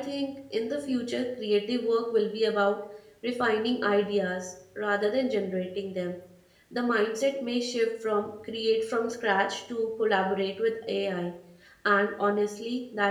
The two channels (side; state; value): both; identical; correlation 1.00